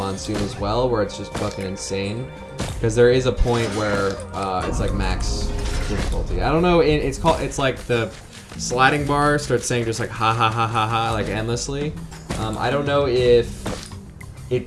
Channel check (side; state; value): both; identical; correlation 1.00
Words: as well, where it's just fucking insane. Because there is a point where it's like max difficulty. I don't know. It's like the sliding bar starts saying just like ha ha ha ha ha like endlessly. I don't know if